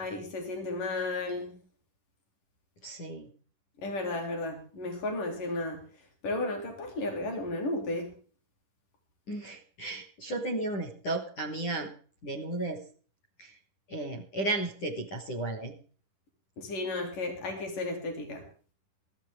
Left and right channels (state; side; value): late; right; 10 ms